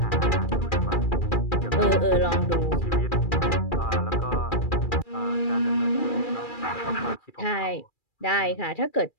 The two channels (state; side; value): late; right; 2.4 ms